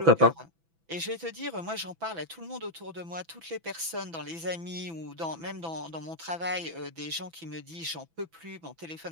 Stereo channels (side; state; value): left; late; 6.0 ms